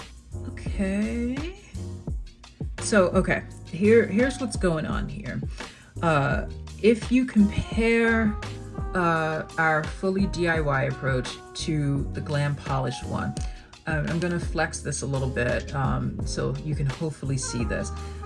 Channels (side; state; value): both; identical; correlation 1.00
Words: Okay. So, okay. Here's what's going on here. If you compare our fully DIY approach to the Glam polished one, I'm gonna flex this a little bit so you can hopefully see this.